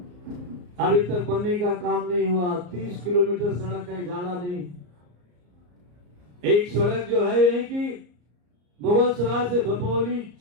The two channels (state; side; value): late; left; 34 ms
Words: अभी तक बनने का काम नहीं हुआ। 30 किलोमीटर सड़क है, ज्यादा नहीं। एक सड़क जो है यही की मुगल सराय से भपौली